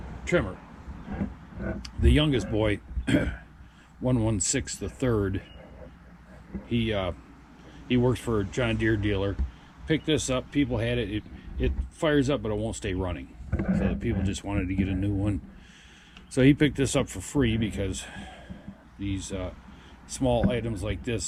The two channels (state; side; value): identical; both; correlation 1.00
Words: trimmer. The youngest boy, 116 the third, he works for a John Deere dealer. Picked this up. People had it. It fires up, but it won't stay running. So the people just wanted to get a new one. So he picked this up for free because these small items like